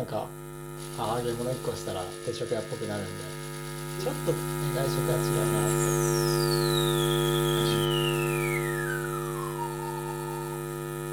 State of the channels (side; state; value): both; identical; correlation 1.00